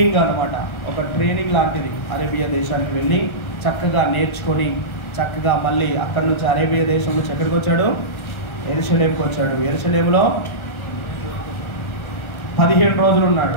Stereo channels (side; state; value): right; late; 1.3 ms